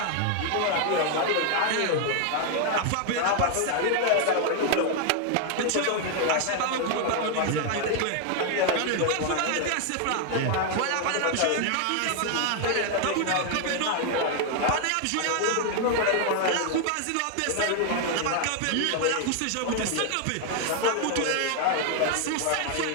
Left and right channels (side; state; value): both; different; correlation 0.00